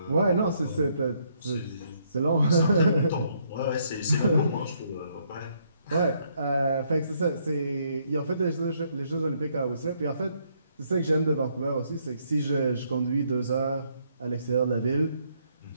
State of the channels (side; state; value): both; inverted; correlation -0.71